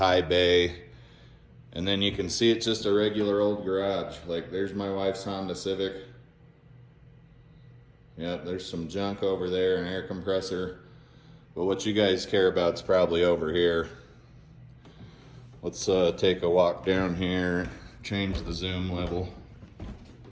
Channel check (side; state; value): both; identical; correlation 1.00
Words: bay, and then you can see it's just a regular old garage. Like, there's my wife's Honda Civic. Yep, there's some junk over there, an air compressor. But what you guys care about is probably over here. Let's take a walk down here, change the zoom level.